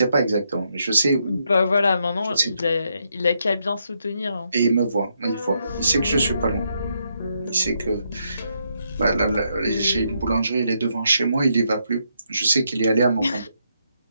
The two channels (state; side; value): inverted; both; correlation -0.78